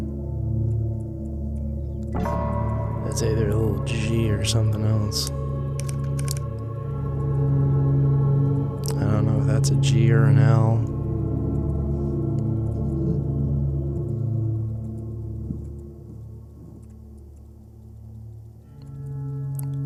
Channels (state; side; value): identical; both; correlation 1.00